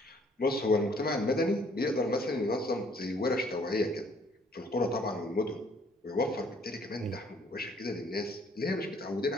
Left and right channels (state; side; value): normal; both; correlation 0.62